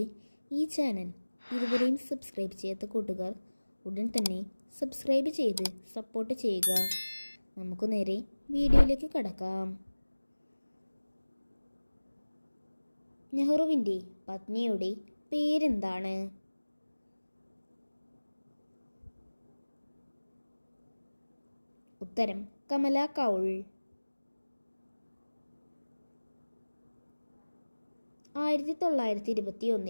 ഈ ചാനൽ ഇതുവരെയും സബ്സ്ക്രൈബ് ചെയ്യാത്ത കൂട്ടുകാർ ഉടൻ തന്നെ സബ്സ്ക്രൈബ് ചെയ്ത് സപ്പോർട്ട് ചെയ്യുക. നമുക്ക് നേരെ വീഡിയോയിലേക്ക് കടക്കാം. നെഹ്റുവിൻ്റെ പത്നിയുടെ പേരെന്താണ്? ഉത്തരം കമല കൗൾ.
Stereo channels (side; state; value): both; inverted; correlation -1.00